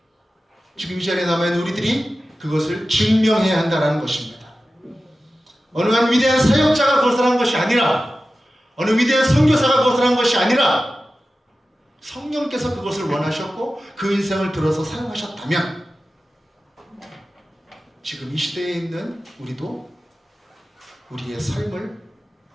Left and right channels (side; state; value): both; normal; correlation 0.94